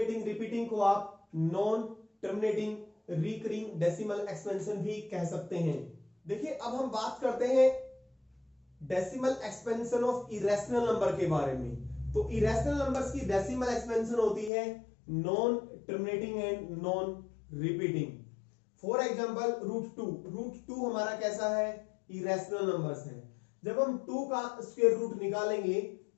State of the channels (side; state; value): right; drops out; at 14.5 s